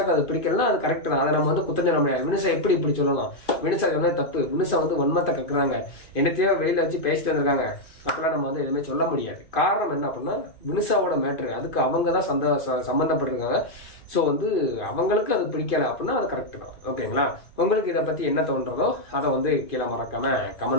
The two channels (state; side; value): late; right; 2.5 ms